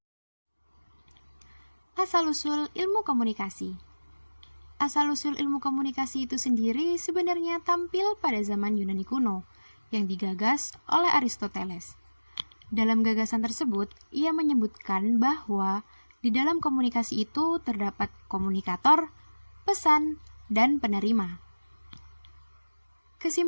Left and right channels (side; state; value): both; inverted; correlation -1.00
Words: Asal-usul ilmu komunikasi. Asal-usul ilmu komunikasi itu sendiri sebenarnya tampil pada zaman Yunani kuno, yang digagas oleh Aristoteles. Dalam gagasan tersebut, ia menyebutkan bahwa di dalam komunikasi itu terdapat komunikator, pesan, dan penerima.